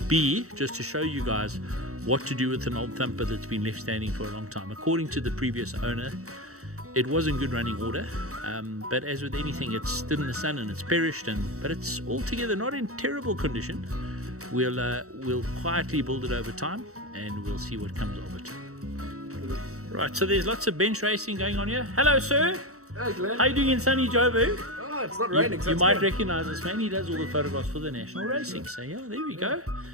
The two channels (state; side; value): late; left; 0.64 ms